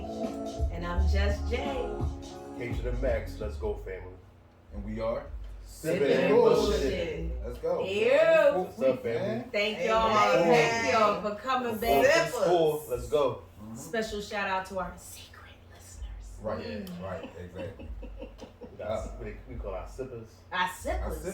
And I'm Just Jay. K to the max. Let's go, family. And we are Sipping and bullshit. Let's go. Ew. What's up, family? Thank y'all. Thank y'all for coming back. Let's go. Special shout out to our secret listeners. Right, exactly. We call our sippers. Our sippers.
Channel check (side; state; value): both; identical; correlation 1.00